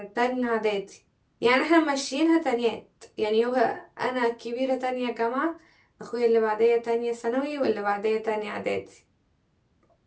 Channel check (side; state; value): both; identical; correlation 1.00